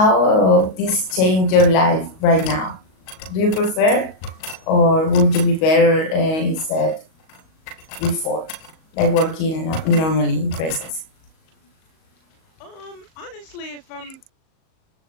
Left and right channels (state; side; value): late; right; 38 ms